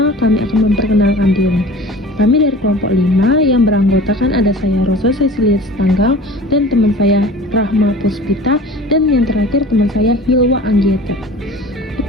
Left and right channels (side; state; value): both; normal; correlation 0.42